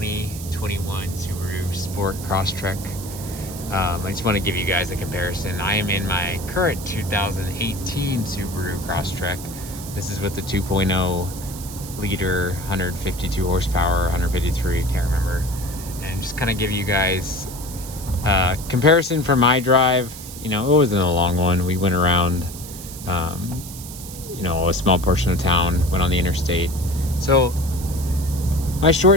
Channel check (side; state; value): right; noise; hiss, 13 dB below the sound